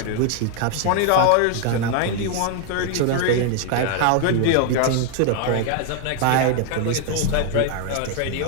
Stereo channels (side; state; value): both; different; correlation 0.00